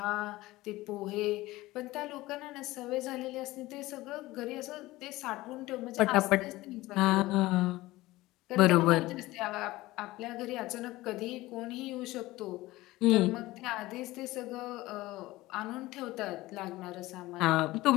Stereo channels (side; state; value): right; quieter; 18.6 dB